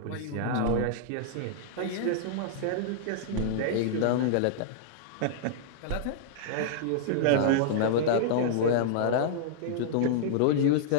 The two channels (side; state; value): both; different; correlation -0.01